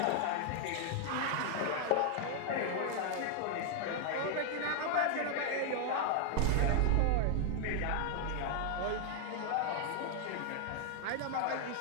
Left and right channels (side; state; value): both; different; correlation 0.00